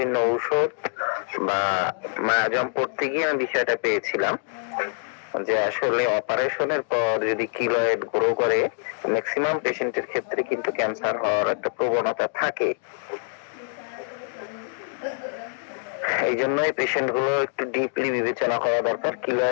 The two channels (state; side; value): silent; right; 59 dB below the other